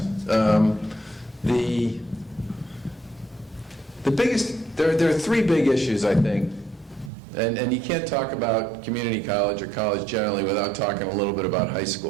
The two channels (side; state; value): left; drops out; at 7.1 s